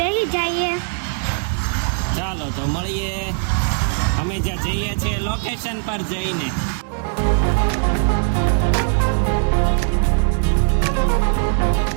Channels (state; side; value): silent; left; 66 dB below the other